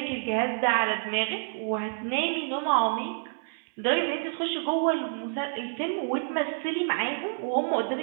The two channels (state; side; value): silent; left; digital silence